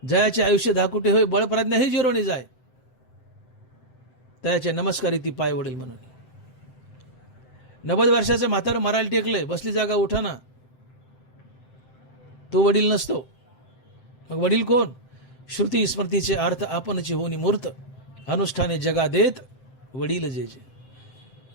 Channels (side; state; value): right; late; 7.8 ms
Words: जयाचे आयुष्य धाकुटे होय, बळप्रज्ञा हे जिरोने जाय, तयाचे नमस्कारी ती पाय वडील म्हणून. 90 वर्षाचं म्हातारं मारायला टेकलंय, बसली जागा उठाना, तो वडील नसतो. मग वडील कोण? श्रुती स्मृतीचे अर्थ आपणची होनी मूर्त, अनुष्ठाने जगा देत वडील जे जे.